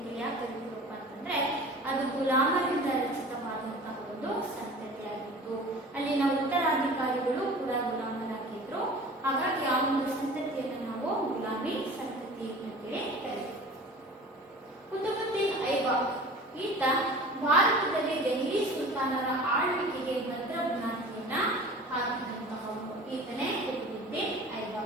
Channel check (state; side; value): normal; both; correlation 0.40